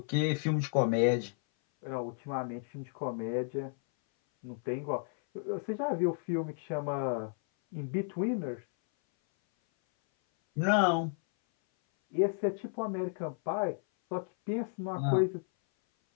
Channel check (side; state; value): right; silent; 56 dB below the other